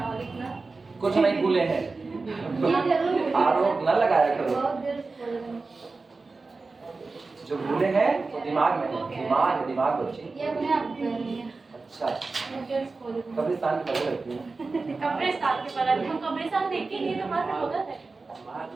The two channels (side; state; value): left; quieter; 3.9 dB